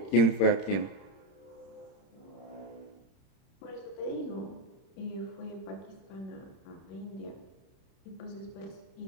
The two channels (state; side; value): late; right; 31 ms